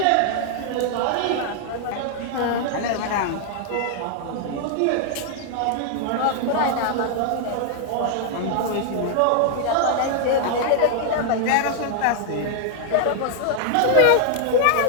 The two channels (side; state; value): both; different; correlation -0.01